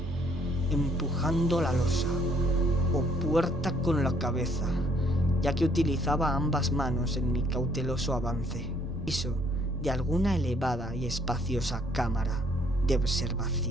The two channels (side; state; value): both; normal; correlation 0.64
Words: empujando la losa o puerta con la cabeza, ya que utilizaba ambas manos en mi cauteloso avance. Piso de alguna elevada y espaciosa cámara de